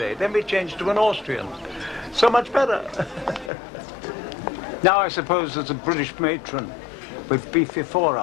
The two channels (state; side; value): drops out; right; at 3.5 s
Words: Then we changed to an Austrian. So much better. Now I suppose there's a British matron with beefy